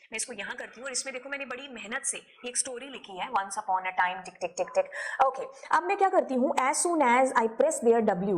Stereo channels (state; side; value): identical; both; correlation 1.00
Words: मैं इसको यहां करती हूँ और इसमें देखो मैंने बड़ी मेहनत से एक स्टोरी लिखी है, once upon a time tick tick tick tick. Okay, अब मैं क्या करती हूँ, as soon as I press there